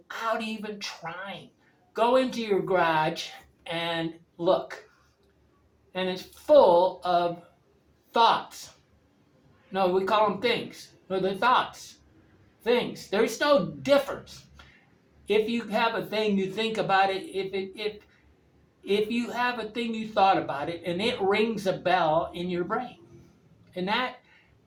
even trying. Go into your garage and look. And it's full of thoughts. No, we call them things. No, they're thoughts. Things. There's no difference. If you have a thing, you think about it. if you have a thing you thought about it and it rings a bell in your brain. And that,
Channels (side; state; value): both; identical; correlation 1.00